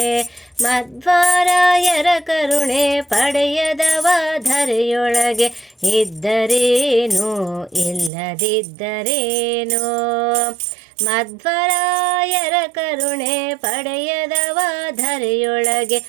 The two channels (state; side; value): drops out; left; at 8.1 s